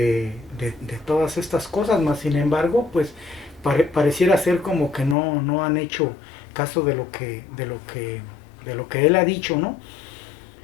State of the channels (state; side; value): drops out; right; at 5.2 s